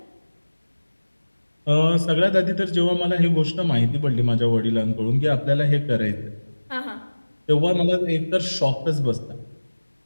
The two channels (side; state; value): both; inverted; correlation -1.00